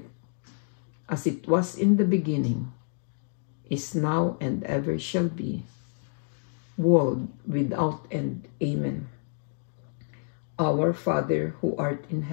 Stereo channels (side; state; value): right; silent; 59 dB below the other